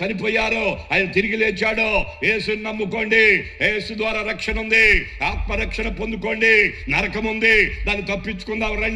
ఆయన తిరిగి లేచాడు. యేసుని నమ్ముకోండి, యేసు ద్వారా రక్షణ ఉంది, ఆత్మరక్షణ పొందుకోండి. నరకం ఉంది, దాన్ని తప్పించుకుందాం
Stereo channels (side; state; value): both; identical; correlation 1.00